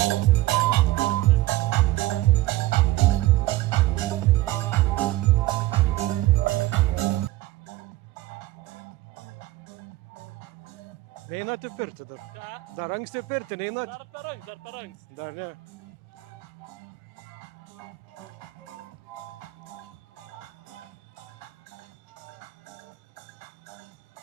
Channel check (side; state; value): left; quieter; 17.2 dB